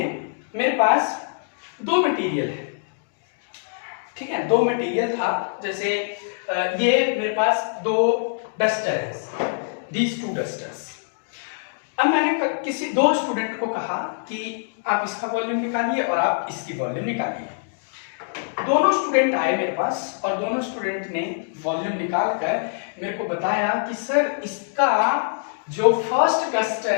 मेरे पास दो मटेरियल है, ठीक है, दो मटेरियल था, जैसे ये मेरे पास दो डस्टर है, दीज टू डस्टर्स। अब मैंने किसी दो स्टूडेंट को कहा कि आप इसका वॉल्यूम निकालिए और आप इसकी वॉल्यूम निकालिए। दोनों स्टूडेंट आए मेरे पास और दोनों स्टूडेंट ने वॉल्यूम निकालकर मेरे को बताया कि सर इसका जो फर्स्ट डस्टर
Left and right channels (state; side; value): silent; right; digital silence